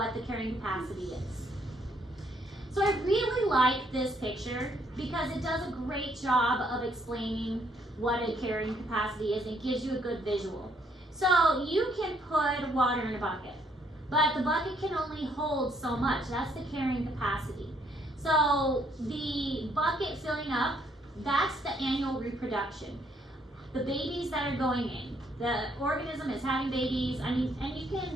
the carrying capacity is. So I really like this picture because it does a great job of explaining what a carrying capacity is and gives you a good visual. So you can put water in a bucket, but the bucket can only hold so much. That's the carrying capacity. So the bucket filling up, that's the annual reproduction. The babies that are going in, the organism is having babies, and you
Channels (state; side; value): normal; both; correlation 0.69